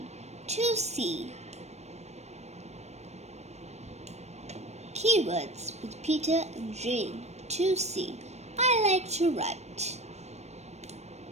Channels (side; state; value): left; late; 0.32 ms